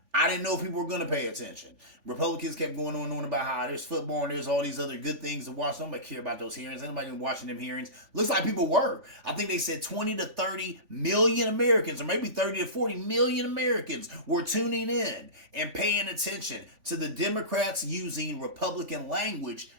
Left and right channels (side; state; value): left; late; 3.5 ms